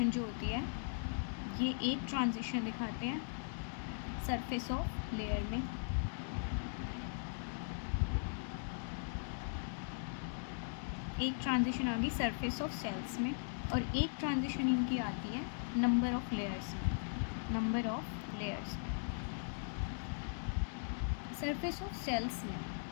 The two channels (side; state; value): right; silent; digital silence